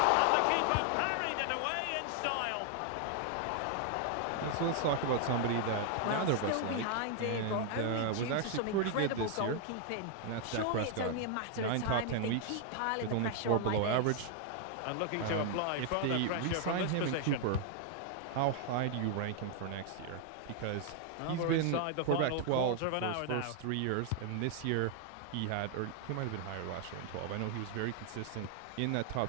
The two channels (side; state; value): both; different; correlation 0.00